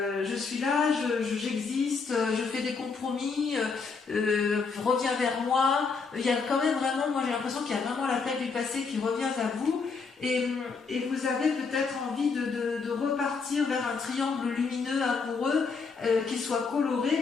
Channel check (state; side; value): quieter; right; 4.9 dB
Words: suis là, j'existe, je fais des compromis, reviens vers moi. Il y a quand même vraiment, moi j'ai l'impression qu'il y a vraiment l'appel du passé qui revient à vous, et vous avez peut-être envie de repartir vers un triangle lumineux, amoureux, qui soit